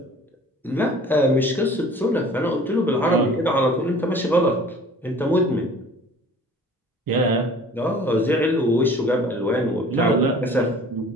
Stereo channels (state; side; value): normal; both; correlation 0.48